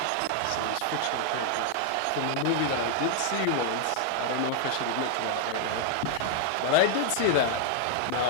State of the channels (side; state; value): both; different; correlation 0.00